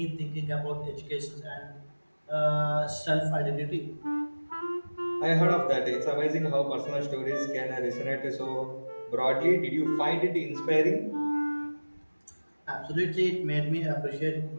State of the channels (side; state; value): both; inverted; correlation -1.00